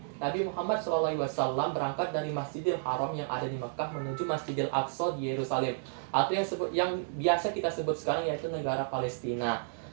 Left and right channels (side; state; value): left; silent; digital silence